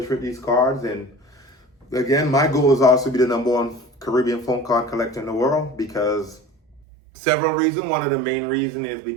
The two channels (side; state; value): left; drops out; at 6.8 s